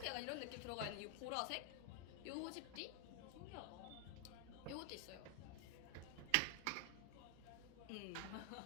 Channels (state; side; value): different; both; correlation 0.00